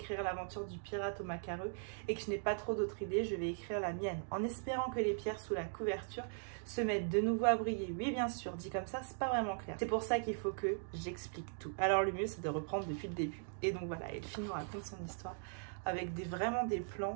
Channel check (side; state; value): left; silent; digital silence